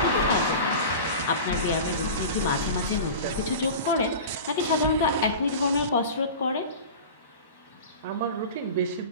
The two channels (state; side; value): inverted; both; correlation -0.33